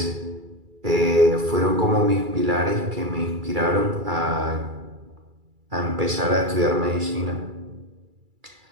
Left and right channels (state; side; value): late; left; 2.3 ms